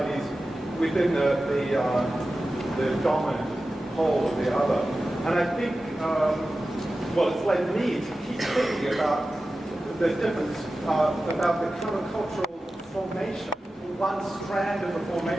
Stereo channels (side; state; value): both; normal; correlation 0.94